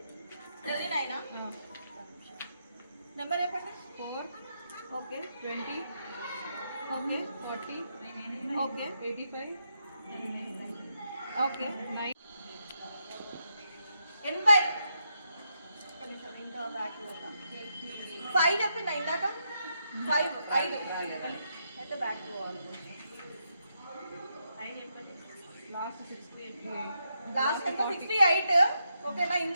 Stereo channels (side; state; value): both; inverted; correlation -0.82